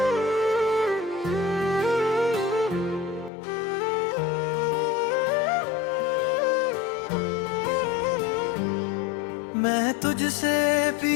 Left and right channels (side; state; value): right; drops out; at 3.3 s